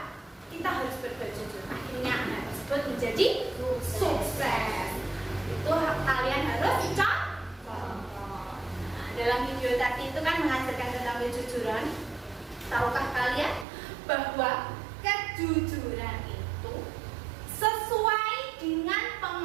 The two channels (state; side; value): drops out; left; at 13.7 s